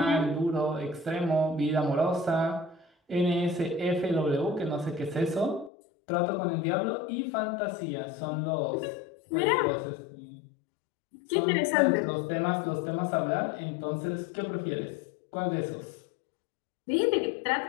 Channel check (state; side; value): drops out; right; at 5.7 s